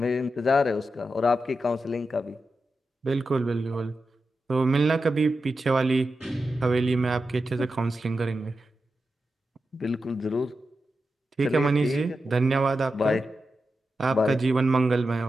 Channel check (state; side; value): normal; both; correlation 0.90